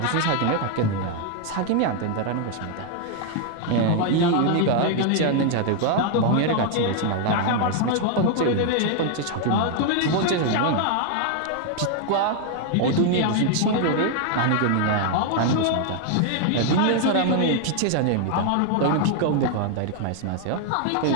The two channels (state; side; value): different; both; correlation 0.00